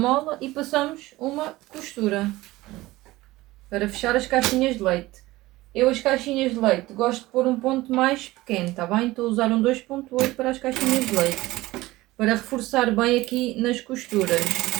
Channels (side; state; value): left; quieter; 18.6 dB